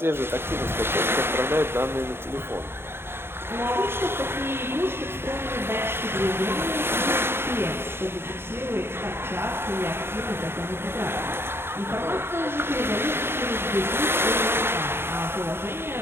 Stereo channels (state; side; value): late; left; 0.11 ms